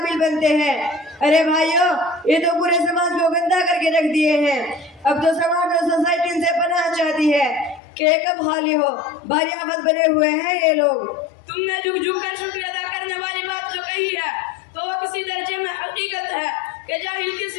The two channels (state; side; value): drops out; right; at 7.8 s